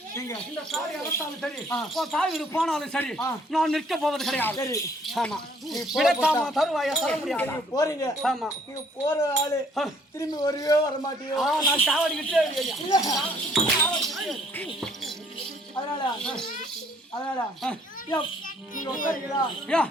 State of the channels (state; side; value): normal; both; correlation 0.62